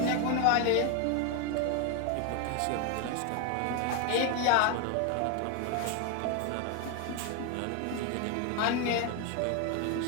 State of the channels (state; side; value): different; both; correlation 0.01